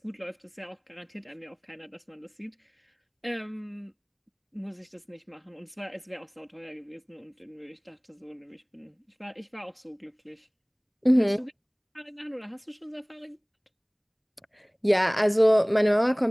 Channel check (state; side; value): identical; both; correlation 1.00